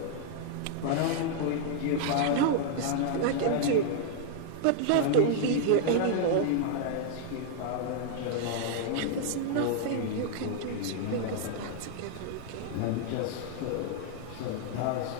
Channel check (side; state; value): both; different; correlation -0.01